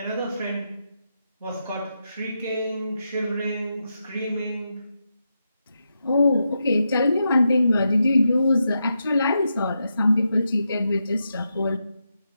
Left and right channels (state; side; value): inverted; both; correlation -0.86